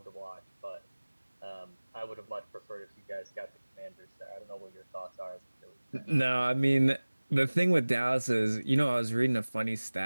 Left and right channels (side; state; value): both; inverted; correlation -1.00